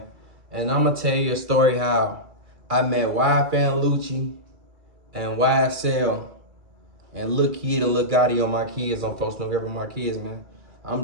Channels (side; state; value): left; late; 2.3 ms